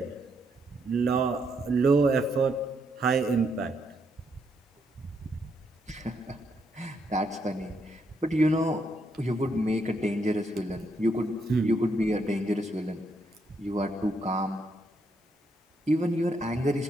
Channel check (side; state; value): both; normal; correlation 0.76